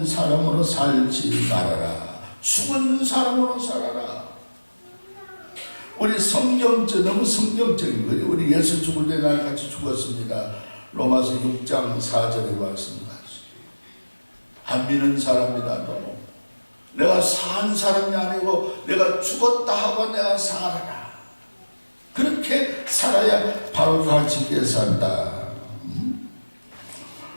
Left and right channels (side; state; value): both; inverted; correlation -1.00